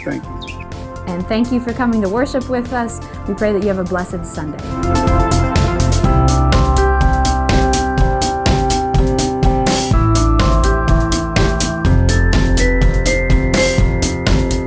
Thank you. And thank you for coming to worship with us. We pray that you have a blessed Sunday.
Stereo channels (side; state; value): both; identical; correlation 1.00